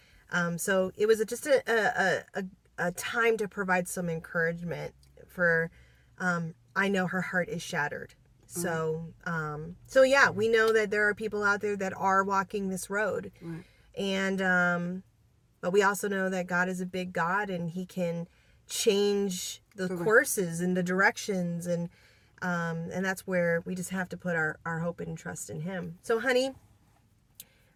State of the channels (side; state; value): both; identical; correlation 1.00